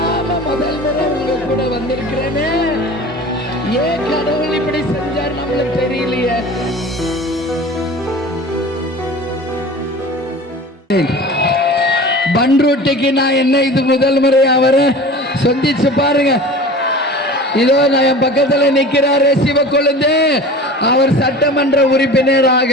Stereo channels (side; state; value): both; normal; correlation 0.38